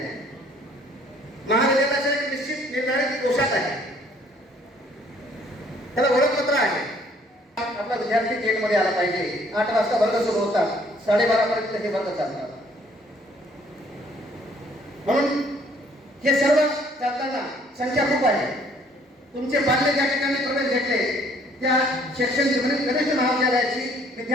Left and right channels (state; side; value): normal; both; correlation 0.61